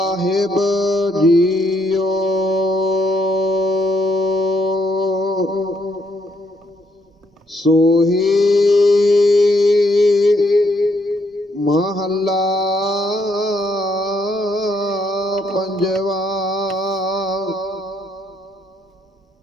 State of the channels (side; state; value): both; normal; correlation 0.73